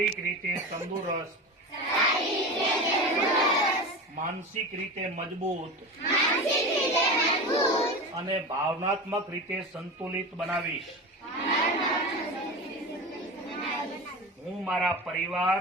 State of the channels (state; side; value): normal; both; correlation 0.27